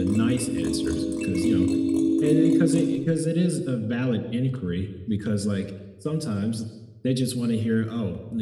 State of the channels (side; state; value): both; identical; correlation 1.00